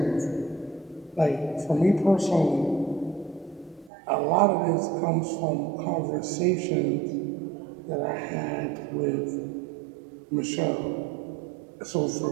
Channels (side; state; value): left; drops out; at 3.9 s